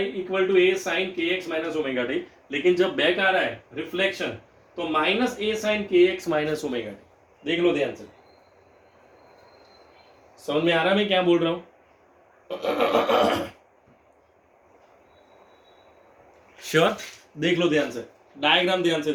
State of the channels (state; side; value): identical; both; correlation 1.00